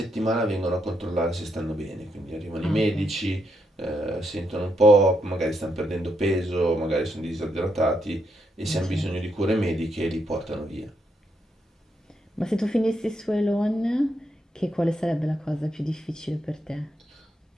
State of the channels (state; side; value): normal; both; correlation 0.79